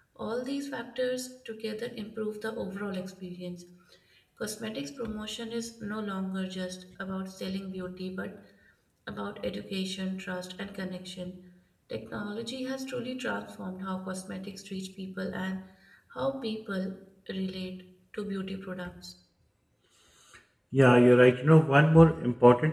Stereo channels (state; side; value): identical; both; correlation 1.00